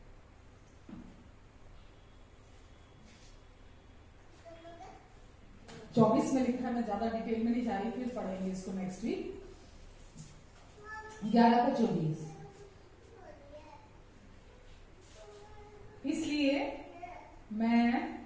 24 में लिखा है, मैं ज्यादा डिटेल में नहीं जा रही, फिर पढ़ेंगे इसको नेक्स्ट वीक। 11 का 24। इसलिए मैं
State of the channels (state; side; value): identical; both; correlation 1.00